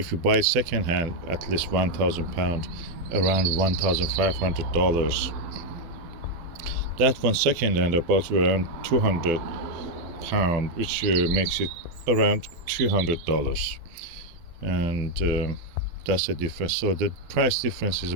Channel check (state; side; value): late; left; 12 ms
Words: you buy it second hand, at least £1,000, around $1,500. That one second hand about around £200, which makes it around $300, and that's the difference. So the price difference is